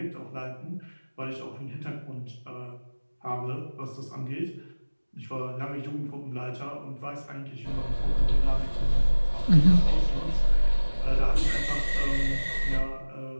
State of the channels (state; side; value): inverted; both; correlation -1.00